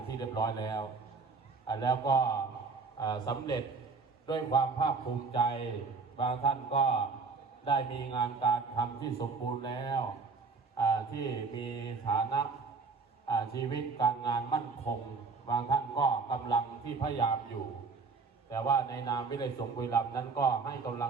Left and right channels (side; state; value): left; quieter; 4.5 dB